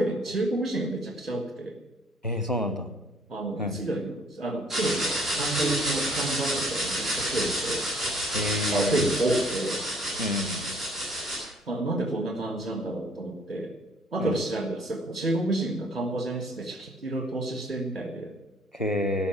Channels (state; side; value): normal; both; correlation 0.59